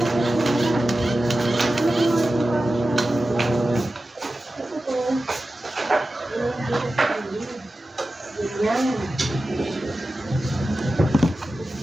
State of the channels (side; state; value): both; normal; correlation 0.94